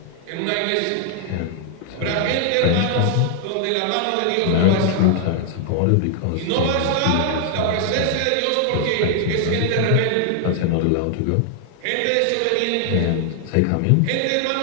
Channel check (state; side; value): different; both; correlation 0.00